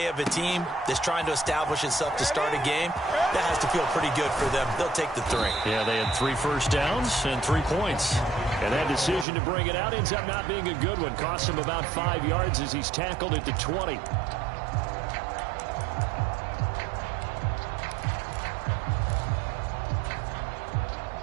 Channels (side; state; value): left; drops out; at 9.2 s